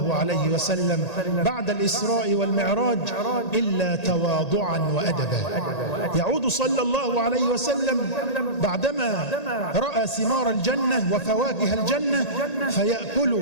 عليه وسلم بعد الإسراء والمعراج إلا تواضعا وأدبا. يعود صلى الله عليه وسلم بعدما رأى ثمار الجنة وفواكه الجنة فيأكل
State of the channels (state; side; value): late; right; 1.8 ms